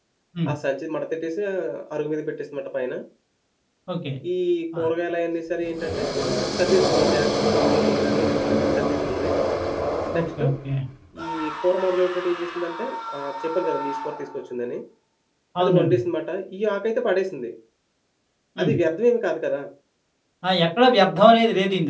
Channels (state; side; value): identical; both; correlation 1.00